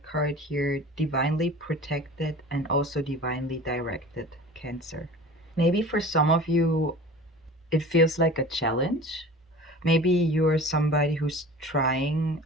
card here, divinely protected and also divinely directed, Cancer. Maybe for some of you, it feels like a challenge. Maybe you're somebody who's trying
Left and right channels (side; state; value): both; normal; correlation 0.40